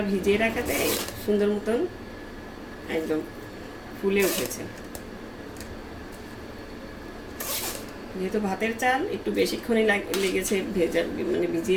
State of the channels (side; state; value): both; identical; correlation 1.00